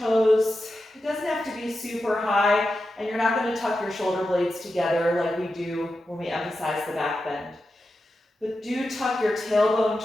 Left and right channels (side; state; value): both; normal; correlation 0.90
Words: It doesn't have to be super high, and you're not going to tuck your shoulder blades together like we do when we emphasize the back bend. But do tuck your tailbone